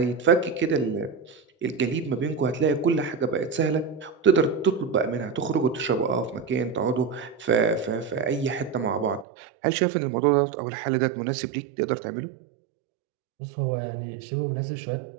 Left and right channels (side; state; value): left; drops out; at 9.2 s